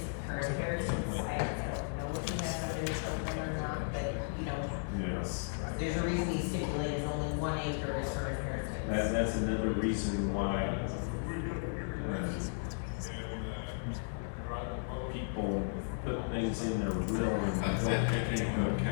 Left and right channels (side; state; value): right; silent; digital silence